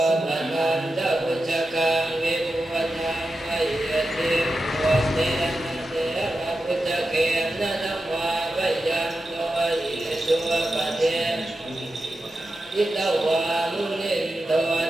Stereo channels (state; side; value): normal; both; correlation 0.91